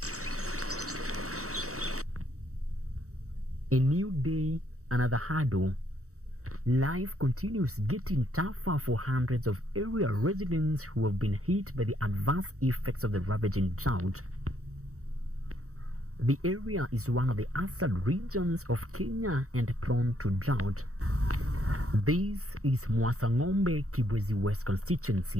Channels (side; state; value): left; late; 0.64 ms